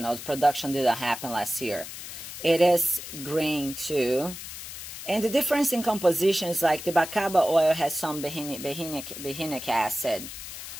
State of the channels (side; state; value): left; noise; hiss, 10 dB below the sound